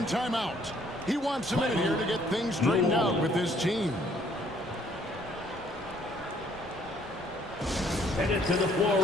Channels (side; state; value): both; normal; correlation 0.63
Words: timeout. He wants a minute here to get things straightened out with his team. Headed to the floor